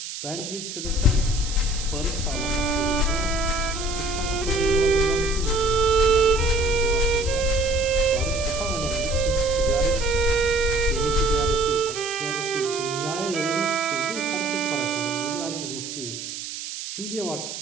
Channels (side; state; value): right; noise; hiss, 8 dB below the sound